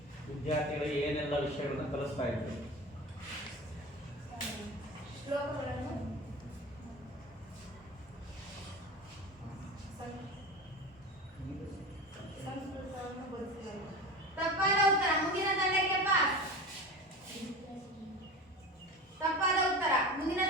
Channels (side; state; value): both; normal; correlation 0.31